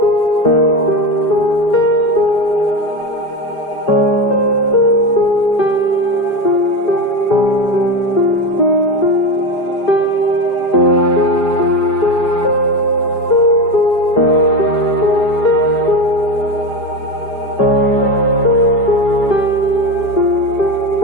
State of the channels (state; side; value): late; right; 4.9 ms